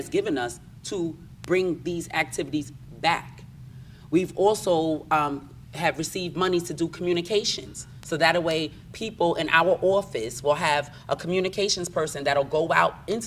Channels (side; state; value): both; identical; correlation 1.00